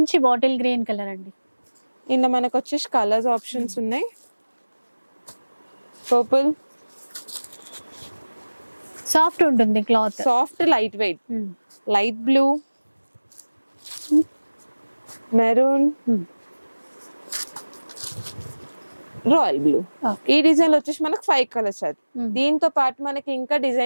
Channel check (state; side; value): inverted; both; correlation -1.00